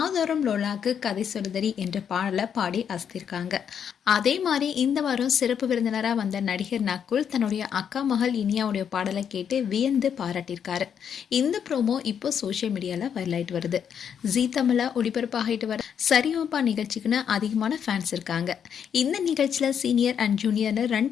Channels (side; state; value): right; quieter; 8.0 dB